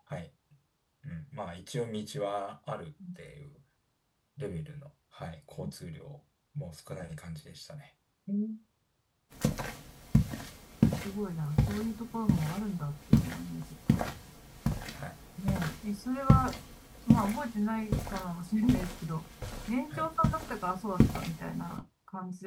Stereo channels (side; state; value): both; identical; correlation 1.00